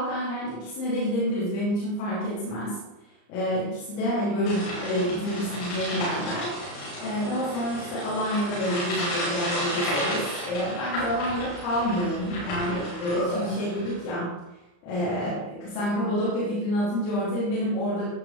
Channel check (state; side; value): late; right; 34 ms